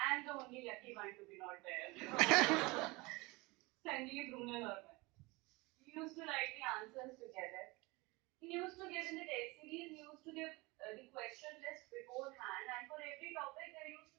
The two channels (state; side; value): quieter; left; 24.1 dB